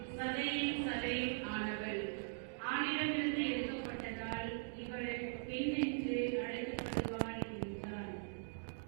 சதையின் சதையும் ஆனவள். ஆணிடமிருந்து எடுக்கப்பட்டதால் இவள் பெண் என்று அழைக்கப்படுவாள் என்றார்.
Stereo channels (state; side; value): silent; left; digital silence